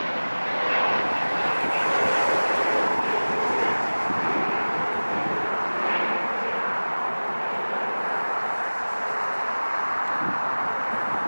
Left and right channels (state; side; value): inverted; both; correlation -1.00